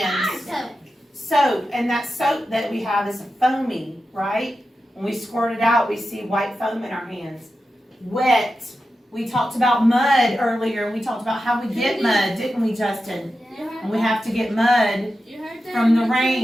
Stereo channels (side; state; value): both; normal; correlation 0.91